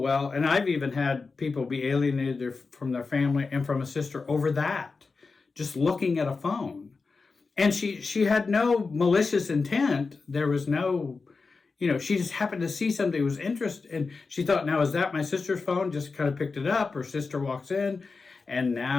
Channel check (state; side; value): quieter; right; 4.4 dB